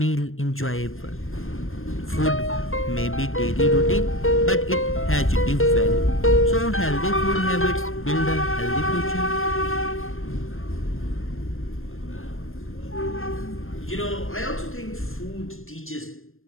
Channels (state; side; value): late; right; 0.60 ms